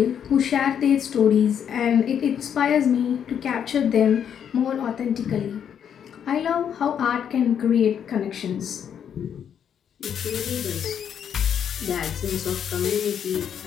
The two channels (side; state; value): right; quieter; 8.5 dB